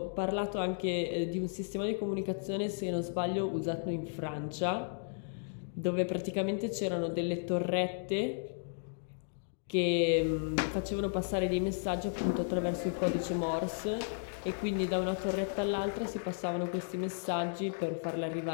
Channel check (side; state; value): right; silent; digital silence